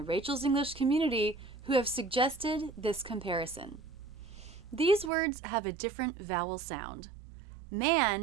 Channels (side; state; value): left; drops out; at 5.1 s